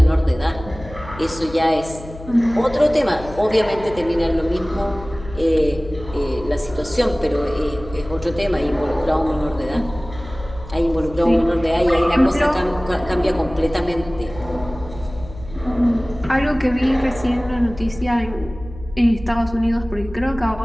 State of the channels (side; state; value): left; noise; hum, 15 dB below the sound